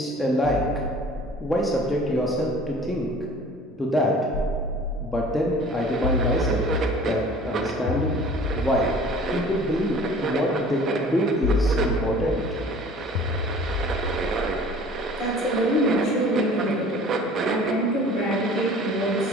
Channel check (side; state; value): both; normal; correlation 0.47